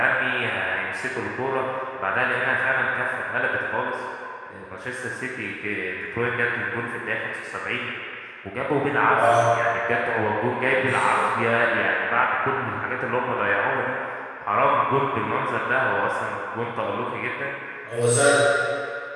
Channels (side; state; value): both; identical; correlation 1.00